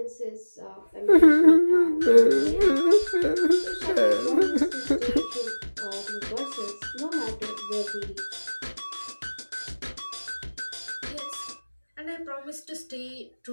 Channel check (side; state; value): both; inverted; correlation -1.00